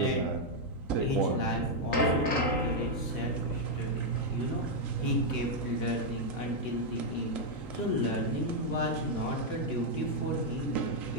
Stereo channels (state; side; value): late; right; 3.9 ms